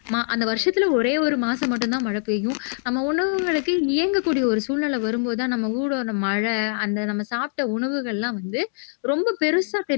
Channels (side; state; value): right; silent; digital silence